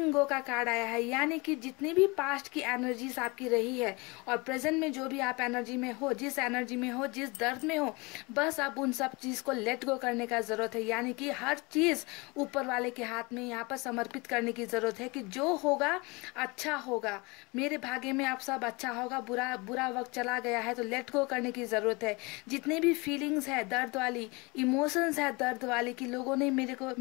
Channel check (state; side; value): quieter; right; 26.6 dB